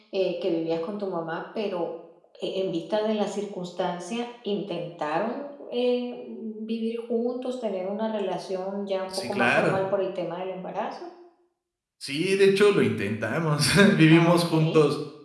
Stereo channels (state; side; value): identical; both; correlation 1.00